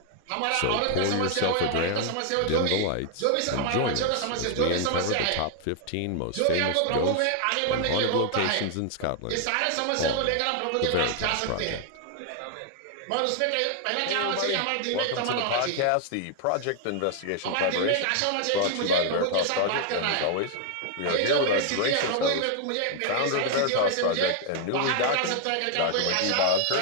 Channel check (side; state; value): both; different; correlation 0.00